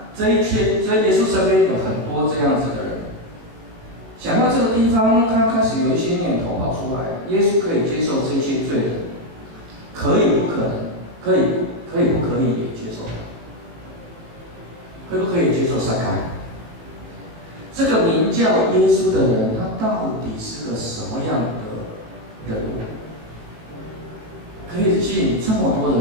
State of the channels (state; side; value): late; left; 19 ms